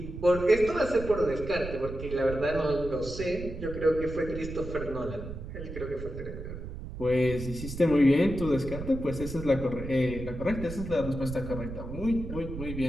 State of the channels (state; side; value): noise; right; rumble, 9 dB below the sound